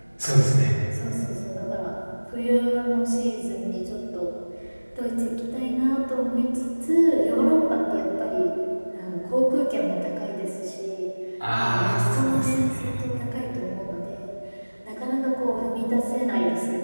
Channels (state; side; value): inverted; both; correlation -1.00